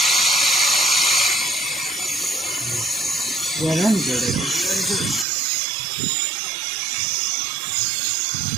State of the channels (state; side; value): drops out; left; at 5.2 s